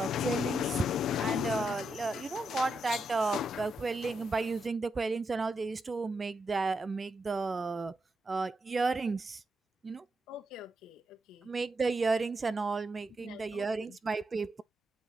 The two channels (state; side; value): normal; both; correlation 0.84